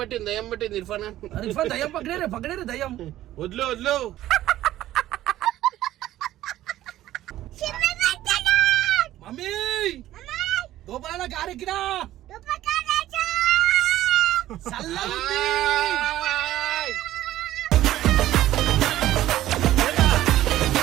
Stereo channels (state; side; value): quieter; left; 14.1 dB